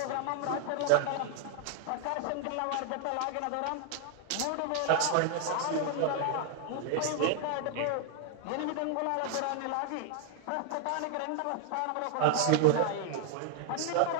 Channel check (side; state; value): both; different; correlation 0.00